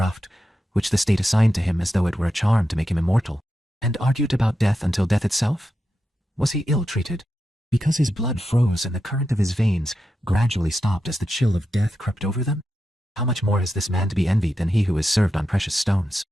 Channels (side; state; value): both; normal; correlation 0.88